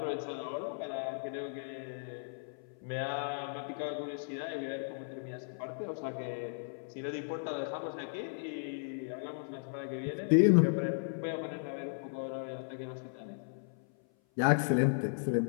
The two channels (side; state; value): right; silent; 54 dB below the other